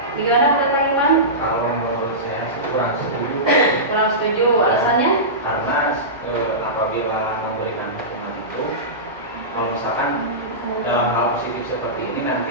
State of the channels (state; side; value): normal; both; correlation -0.18